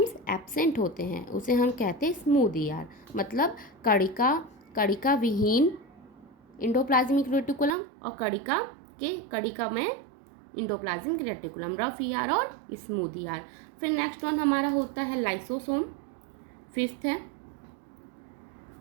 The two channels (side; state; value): left; drops out; at 7.8 s